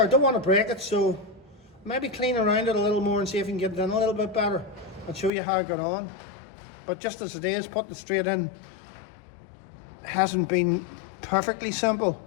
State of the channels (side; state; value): right; drops out; at 5.3 s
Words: I don't want to break it, so maybe clean around it a little more and see if we can get it in a little bit better and show you how I got on. But just as it is, putting it straight in hasn't been perfectly simple.